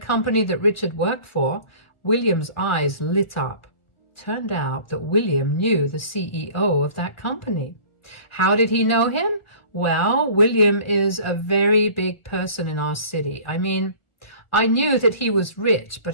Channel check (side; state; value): right; late; 1.4 ms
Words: that Richard worked for, William's eyes lit up. Turned out that William knew the CEO of that company. How did he know him? Well, William is a very big person in our city. I mean, I knew that he was rich, but